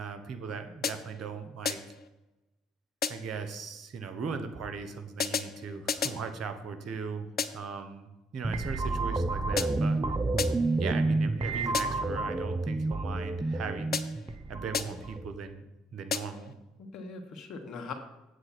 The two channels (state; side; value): normal; both; correlation 0.72